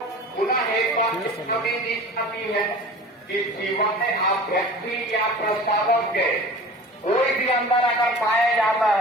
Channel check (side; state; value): both; normal; correlation 0.39